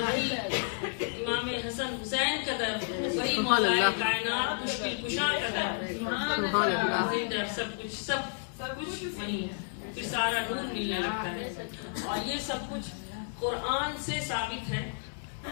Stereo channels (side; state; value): right; silent; 57 dB below the other